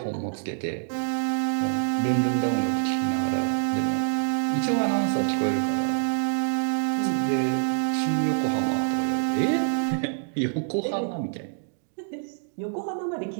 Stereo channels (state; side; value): silent; left; digital silence